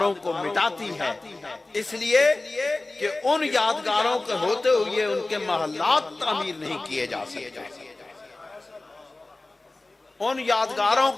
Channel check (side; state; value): right; quieter; 3.0 dB